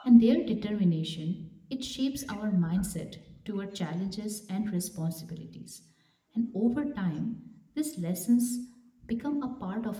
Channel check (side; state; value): both; identical; correlation 1.00